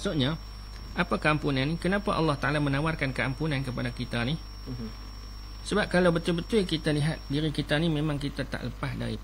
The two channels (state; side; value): identical; both; correlation 1.00